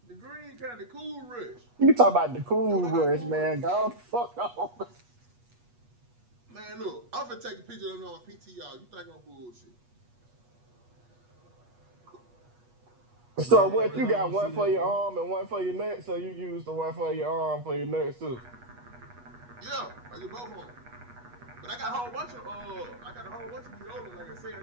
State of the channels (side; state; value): left; late; 8.3 ms